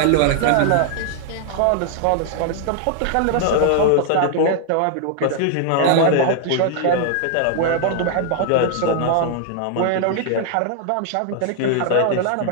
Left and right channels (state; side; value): different; both; correlation 0.00